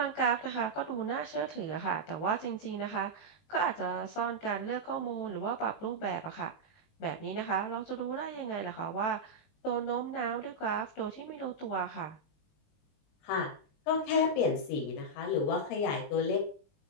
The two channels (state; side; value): late; right; 20 ms